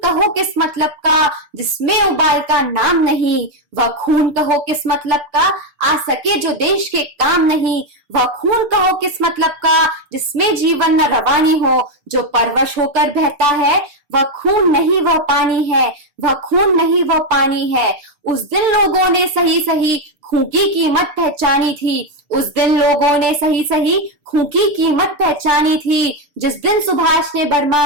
कहो किस मतलब का जिसमें उबाल का नाम नहीं, वह खून कहो किस मतलब का आ सके जो देश के काम नहीं, वह खून कहो किस मतलब का जिसमें जीवन न रवानी हो, जो परवश होकर बहता है वह खून नहीं वह पानी है, वह खून नहीं वह पानी है। उस दिन लोगों ने सही सही खून की कीमत पहचानी थी, उस दिन लोगों ने सही सही खून की कीमत पहचानी थी, जिस दिन सुभाष ने बर्मा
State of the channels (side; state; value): left; late; 6.8 ms